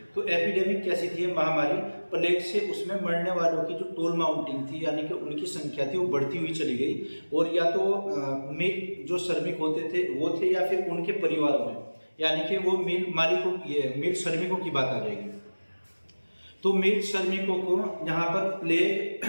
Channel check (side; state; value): both; inverted; correlation -1.00